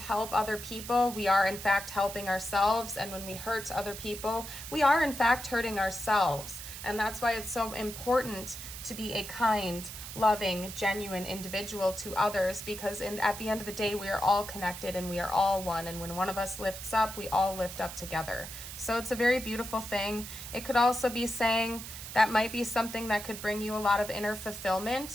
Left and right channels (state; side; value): noise; right; hiss, 10 dB below the sound